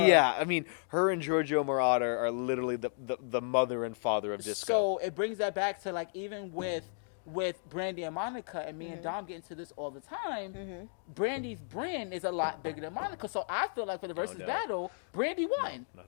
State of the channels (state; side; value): silent; right; 55 dB below the other